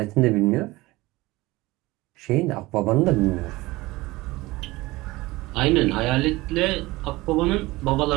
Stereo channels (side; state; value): left; quieter; 20.2 dB